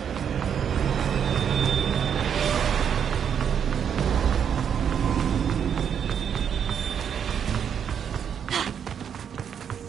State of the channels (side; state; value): left; quieter; 8.0 dB